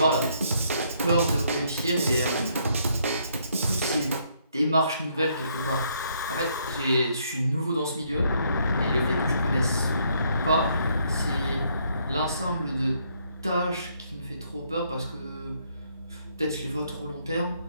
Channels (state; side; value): inverted; both; correlation -0.70